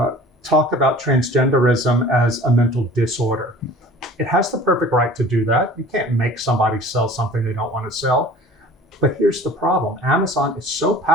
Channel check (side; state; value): both; normal; correlation 0.45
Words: talk about transgenderism as a mental disorder. It has the perfect right to do that. You can't make somebody sell something they don't want to sell. But here's the problem. Amazon is so